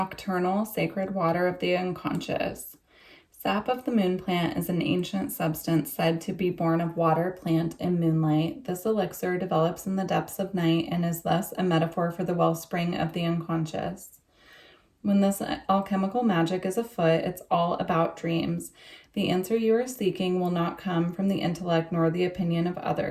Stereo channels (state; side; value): identical; both; correlation 1.00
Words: Sacred Water of the Unconscious. Sap of the moon plant is an ancient substance said to be born of water, plant, and moonlight. This elixir develops in the depths of night and is thus a metaphor for the wellspring of the unconscious. When this alchemical magic is afoot, it's all about dreams. The answer you are seeking will not come from the intellect nor the opinion of